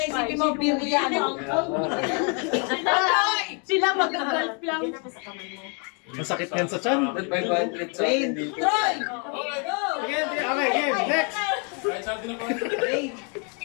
isipin mo, Billy yan. Sila mag-golf lang. Masakit yan sa chan. Troy! Okay, game. Next.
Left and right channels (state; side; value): quieter; right; 37.6 dB